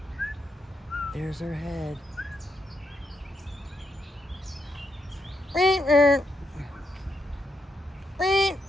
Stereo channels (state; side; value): normal; both; correlation 0.80